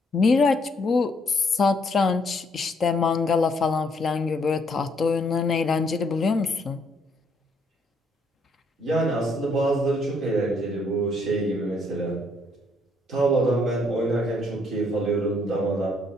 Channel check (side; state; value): both; normal; correlation 0.70